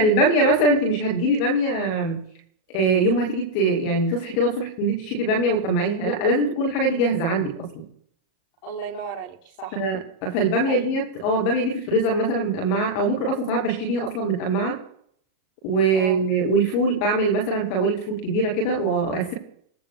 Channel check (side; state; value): right; late; 37 ms